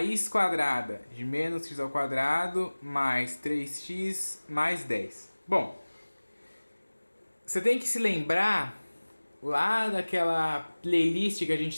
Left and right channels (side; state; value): both; inverted; correlation -1.00